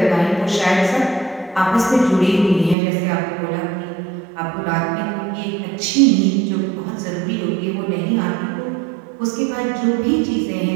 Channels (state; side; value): drops out; left; at 2.8 s